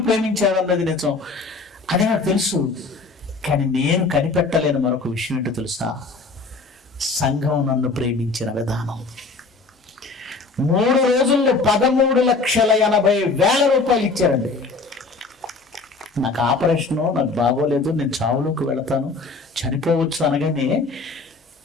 ప్రేమించారన్నది నిజం, అది నాకు తెలుసు. కానీ నేను కనిపెట్టలేని మరొక విషయం ఏంటో తెలుసా? సంఘం నన్ను ప్రేమించిన విధానం. 3 రోజుల్లో 13,80,000 రూపాయలు ఇచ్చారండి. నాకు ఆపరేషను, నాకు బాగోలేదు, నేను చావులోకి వెళతాను, చనిపోవచ్చు అనగానే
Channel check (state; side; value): quieter; right; 3.9 dB